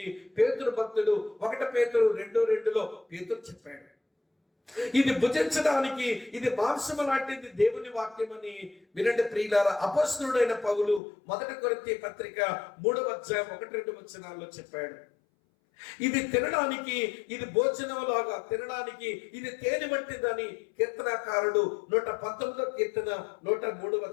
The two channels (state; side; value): drops out; right; at 11.0 s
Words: పేతురు భక్తుడు 1 పేతురు 2:2లో పేతురు చెప్పాడు. ఇది భుజించడానికి ఇది మాంసము లాంటిది దేవుని వాక్యం అని వినండి ప్రియులారా. అపోస్తలుడైన పౌలు 1 కొరింథీ పత్రిక 3వ అధ్యాయం 1-2 వచనాల్లో చెప్పాడు. ఇది తినడానికి, ఇది భోజనం లాగా తినడానికి ఇది తేనె వంటిదని కీర్తనాకారుడు 119వ కీర్తన 103వ